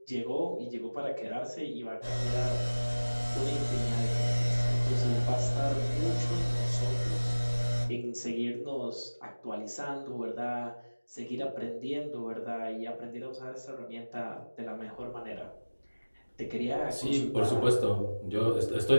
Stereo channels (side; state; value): both; inverted; correlation -1.00